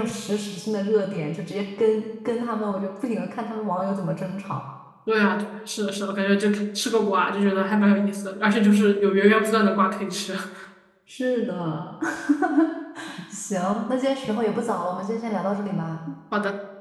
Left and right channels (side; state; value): both; identical; correlation 1.00